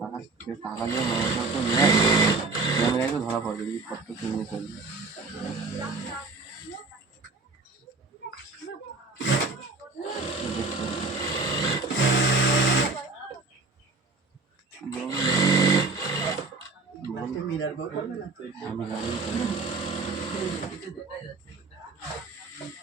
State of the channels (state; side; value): quieter; left; 3.8 dB